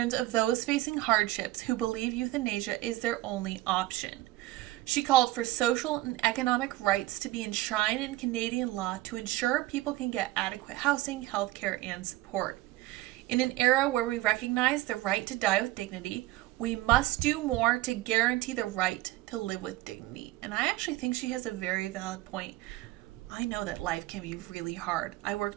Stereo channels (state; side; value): quieter; left; 17.1 dB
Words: of those facing hardships who believe euthanasia is their only option. She called for social and economic rights to be enshrined in Canadian law to ensure people can get adequate housing, healthcare, and support. In an era where we recognize the right to die with dignity, we must do more to guarantee the right to live with dignity. And I actually think she has a very valid point. I know that life can be really hard. I